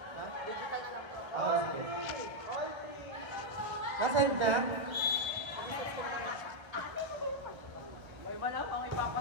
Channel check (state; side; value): late; left; 1.3 ms